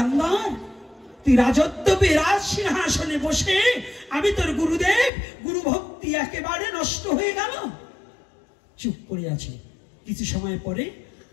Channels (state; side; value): drops out; right; at 5.1 s